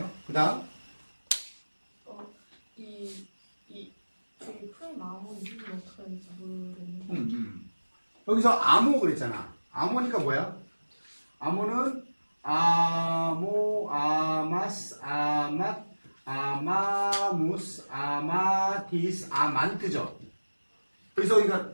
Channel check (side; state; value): both; inverted; correlation -1.00